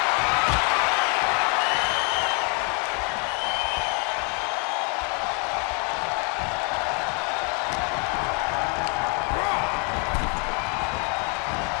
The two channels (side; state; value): right; quieter; 35.1 dB